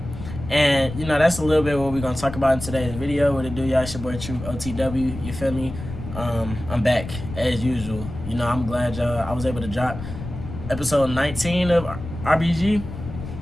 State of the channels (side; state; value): left; noise; rumble, 10 dB below the sound